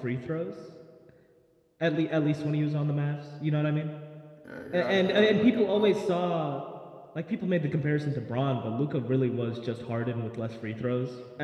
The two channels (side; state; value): both; identical; correlation 1.00